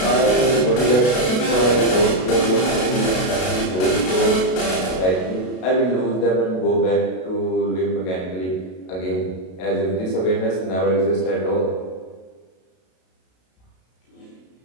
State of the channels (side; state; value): right; late; 32 ms